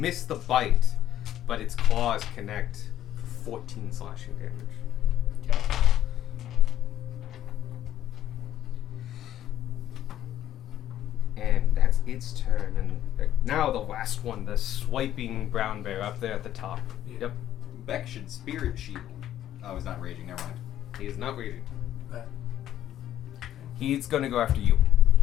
the bite, but its claws connect for 14 slashing damage. Yeah. And that's its turn. And now the last one, the swiping brown bear up there at the top. Yep. Beck should spirit shield. Oh, he's not raging. Never mind. He is not raging. That- He's gonna go after you.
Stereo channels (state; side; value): quieter; right; 11.9 dB